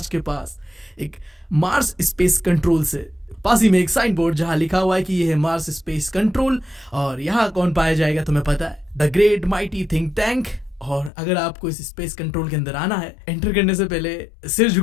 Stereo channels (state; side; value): drops out; right; at 11.1 s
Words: के पास, एक मार्स स्पेस कंट्रोल से पास ही में एक साइन बोर्ड जहां लिखा हुआ है कि ये है मार्स स्पेस कंट्रोल। और यहाँ कौन पाया जाएगा तुम्हें पता है, the great mighty think tank. और अगर आपको इस स्पेस कंट्रोल के अंदर आना है, एंटर करने से पहले सिर